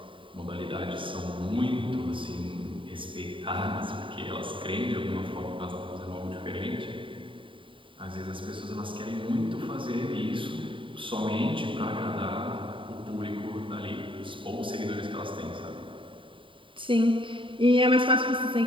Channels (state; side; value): late; left; 0.25 ms